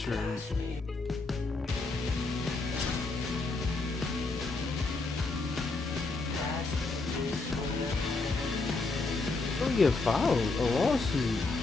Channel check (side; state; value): right; quieter; 3.6 dB